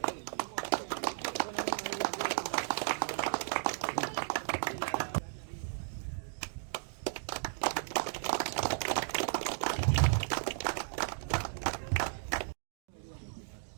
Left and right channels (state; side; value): silent; left; digital silence